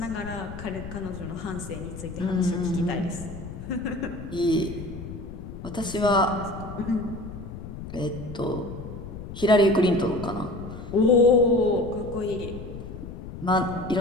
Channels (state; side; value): noise; left; rumble, 11 dB below the sound